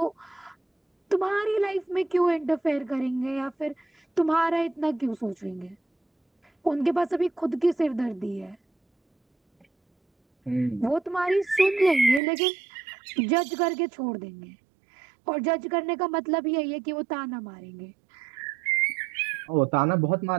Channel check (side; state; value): left; drops out; at 12.2 s